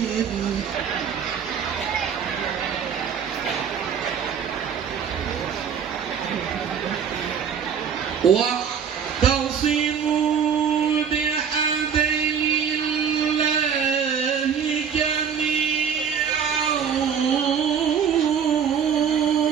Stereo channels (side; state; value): left; quieter; 7.3 dB